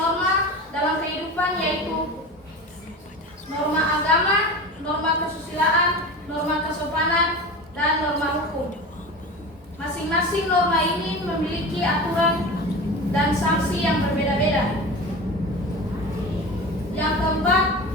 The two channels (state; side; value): normal; both; correlation 0.31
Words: dalam kehidupan yaitu norma agama, norma kesusilaan, norma kesopanan, dan norma hukum. Masing-masing norma ini memiliki aturan dan sanksi yang berbeda-beda. Yang keempat,